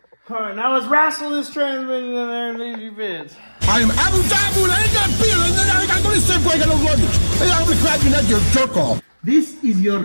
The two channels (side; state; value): both; inverted; correlation -1.00